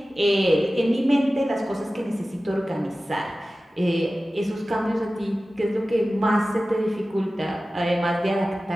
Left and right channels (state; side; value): normal; both; correlation 0.96